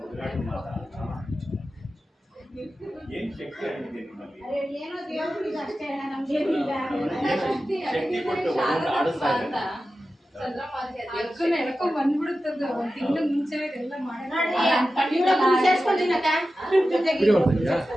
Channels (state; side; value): normal; both; correlation 0.93